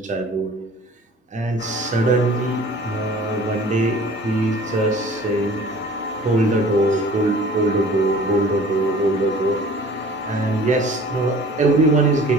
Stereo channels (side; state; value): both; normal; correlation 0.47